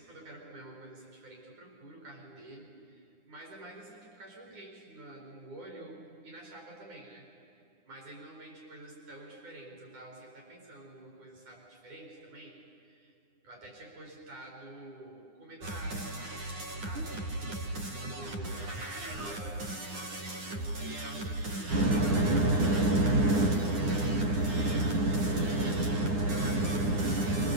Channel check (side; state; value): left; late; 9.8 ms